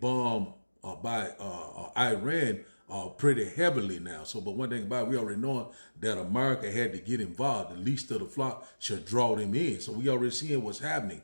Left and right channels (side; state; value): both; inverted; correlation -1.00